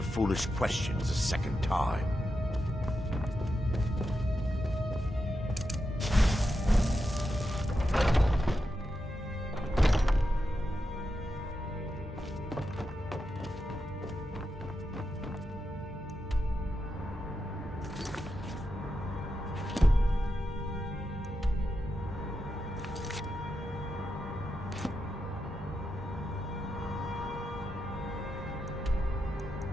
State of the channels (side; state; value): both; normal; correlation 0.87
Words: foolish questions a second time.